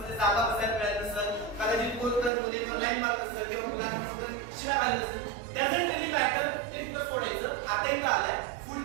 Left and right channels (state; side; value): drops out; left; at 2.3 s